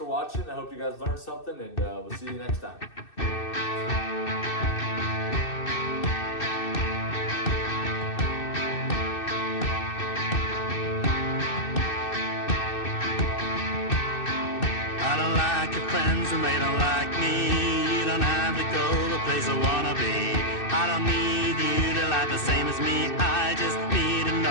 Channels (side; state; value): right; late; 2.6 ms